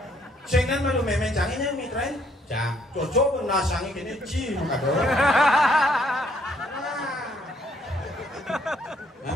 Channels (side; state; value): both; normal; correlation 0.67